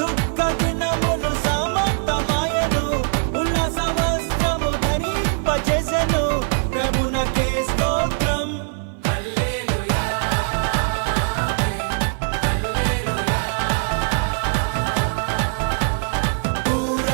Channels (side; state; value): left; silent; 57 dB below the other